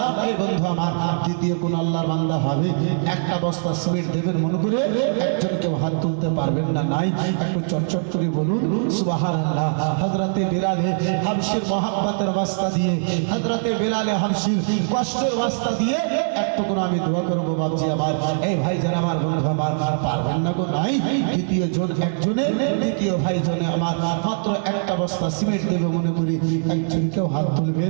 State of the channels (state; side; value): silent; left; digital silence